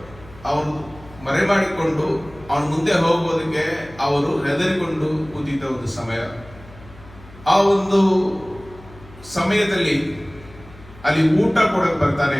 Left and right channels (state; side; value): noise; left; hum, 21 dB below the sound